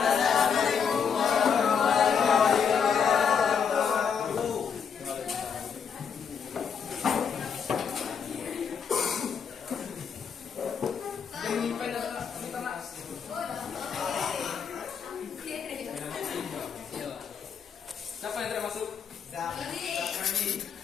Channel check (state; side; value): quieter; right; 6.8 dB